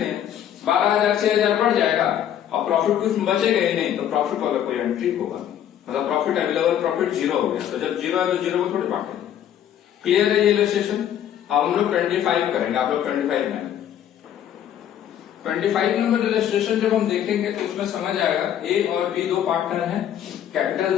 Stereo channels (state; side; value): quieter; right; 10.3 dB